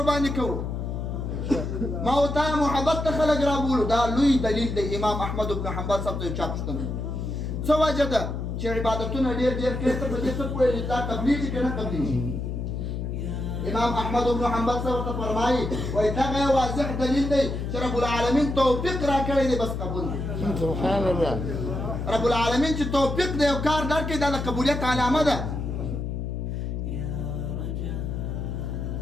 باندې کوو، ما ورته محبت ته خلک رابولو. دا لوی دلیل دی. امام احمد بن حنبل صاحب ته چا پوښتنه څه وجه ده چې عبادتونه ډېر کوي، ته په دې څه پوهېږې دا قبلېږي که نه قبلېږي؟ امام احمد بن حنبل صاحب ته فرمایي وایي دغه واضح دلیل دی چې رب العالمین توفیق راکړی دی، بس قبول دی. سبحان الله. رب العالمین چې توفیق دی او کار درکړي دا د قبولیت علامه ده.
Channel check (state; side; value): noise; left; hum, 3 dB below the sound